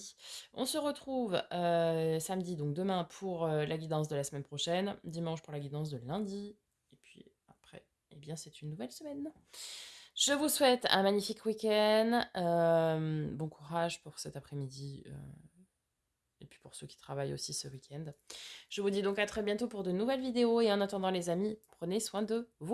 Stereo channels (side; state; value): both; identical; correlation 1.00